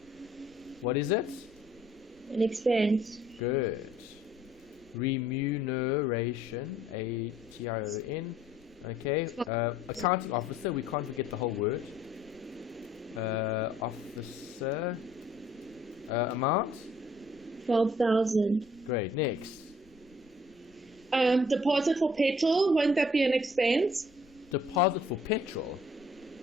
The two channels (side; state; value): both; normal; correlation 0.59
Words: What is it? An expense. Good. Remuneration, A-T-I-O-N. Okay, accounting officer, we can't forget the whole word. Officer, amount? 12,000. Great, next. Deposit for petrol, won't that be an expense? Deposit for petrol?